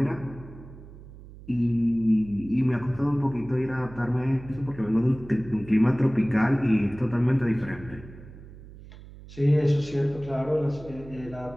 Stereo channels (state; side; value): noise; right; hum, 17 dB below the sound